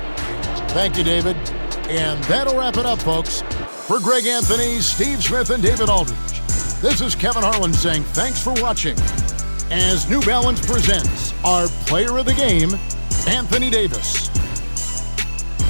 Thank you, David. And that'll wrap it up, folks. For Greg Anthony, Steve Smith, and David Aldridge, this is Kevin Harlan saying thanks for watching as New Balance presents our player of the game, Anthony Davis.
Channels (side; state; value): both; inverted; correlation -1.00